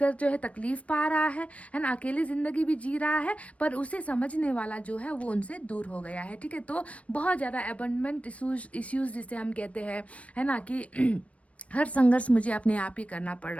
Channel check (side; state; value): right; late; 0.064 ms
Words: जो है तकलीफ़ पा रहा है ना, अकेले ज़िंदगी भी जी रहा है, पर उसे समझने वाला जो है वो उनसे दूर हो गया है। ठीक है, तो बहुत ज़्यादा अबंडमेंट इश्यूज़ जिसे हम कहते हैं, है ना, कि हर संघर्ष मुझे अपने आप ही करना पड़